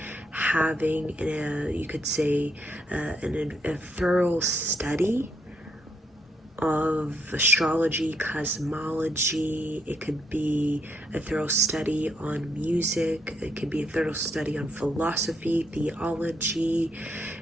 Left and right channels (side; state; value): both; normal; correlation 0.75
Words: having, you could say, a thorough study of astrology, cosmology. It could be a thorough study on music. It could be a thorough study on philosophy, theology.